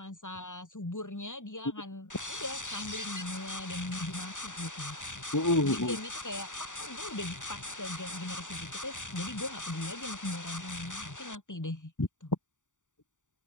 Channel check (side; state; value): right; late; 0.86 ms